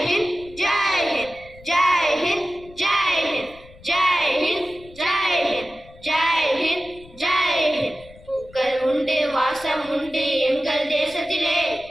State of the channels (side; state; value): left; noise; rumble, 22 dB below the sound